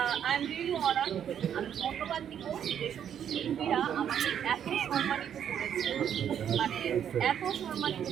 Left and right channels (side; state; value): left; quieter; 9.1 dB